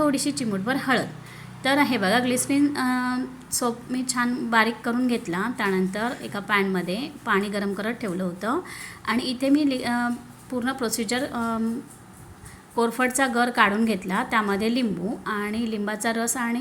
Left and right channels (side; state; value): both; identical; correlation 1.00